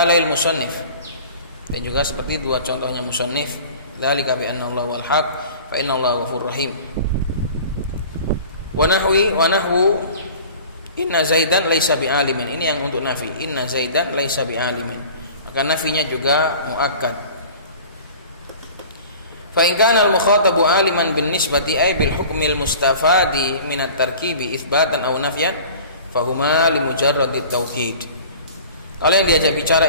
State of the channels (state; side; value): inverted; both; correlation -0.43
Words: musannif, dan juga seperti dua contohnya musannif, dzalika bi anna Allah wal haq fa inna Allah ghafurur rahim. Wa nahwu inna Zaidan laisa bi alimin, ini yang untuk nafi. Inna Zaidan laisa bi alimin, maka nafinya juga muakkad. Fa in kana al-mukhatabu aliman bin nisbati ay bil hukmil mustafadi min at-tarkibi itsbatan aw nafyan fa huma li mujarradit taukid. Kalau yang diajak bicara